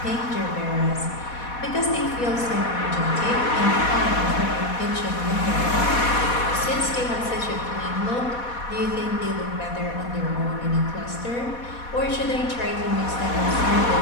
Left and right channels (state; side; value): late; right; 4.1 ms